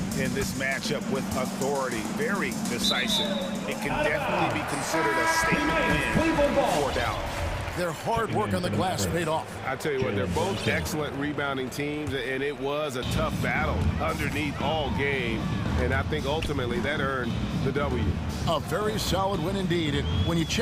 in this matchup with authority. Very decisive. It can definitely be considered a statement win for Dallas. Their hard work on the glass paid off. I tell you what, they're both excellent rebounding teams, and it was a tough battle underneath all game. And I think ultimately that earned the W. A very solid win indeed. And when you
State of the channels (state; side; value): identical; both; correlation 1.00